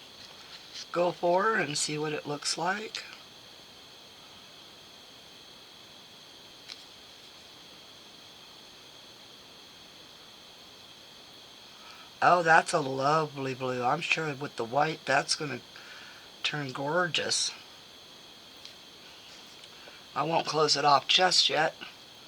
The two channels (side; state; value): both; identical; correlation 1.00